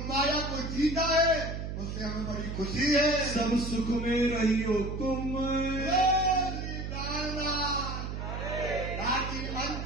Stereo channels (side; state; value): right; noise; hum, 5 dB below the sound